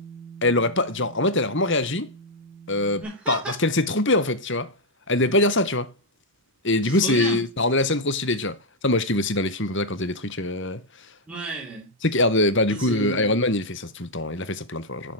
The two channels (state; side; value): normal; both; correlation -0.01